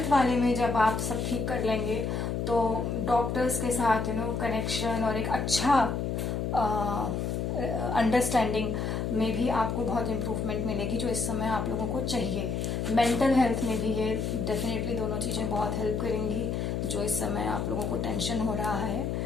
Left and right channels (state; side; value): noise; left; hum, 1 dB below the sound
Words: वाले में जब आप सब ठीक कर लेंगे तो डॉक्टर्स के साथ कनेक्शन और एक अच्छा अंडरस्टैंडिंग में भी आपको बहुत इम्प्रूवमेंट मिलेगी, जो इस समय आप लोगों को चाहिए। मेंटल हेल्थ में भी ये डेफिनेटली दोनों चीज़ें बहुत हेल्प करेंगी, जो इस समय आप लोगों को टेंशन हो रहा है,